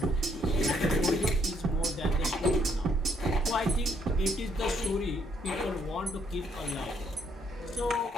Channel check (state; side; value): normal; both; correlation 0.70